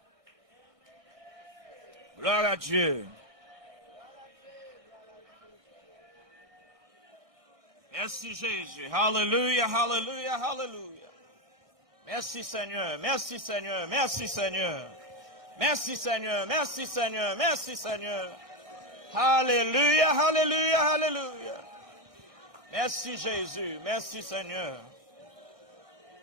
Gloire à Dieu. Merci Jésus. Hallelujah, hallelujah, hallelujah. Merci Seigneur, merci Seigneur, merci Seigneur. Merci Seigneur, merci Seigneur, merci Seigneur. Alléluia, alléluia, alléluia. Merci Jésus, merci Seigneur.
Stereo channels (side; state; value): left; late; 1.2 ms